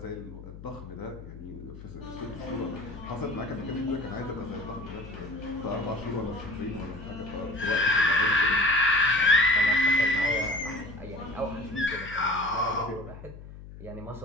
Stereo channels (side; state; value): left; noise; hum, 15 dB below the sound